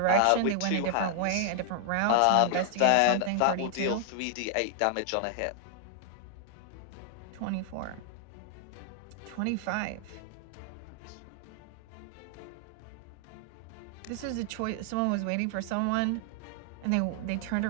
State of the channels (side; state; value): both; different; correlation 0.00